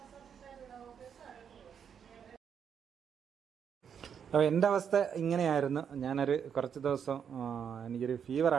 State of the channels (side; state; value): left; quieter; 7.7 dB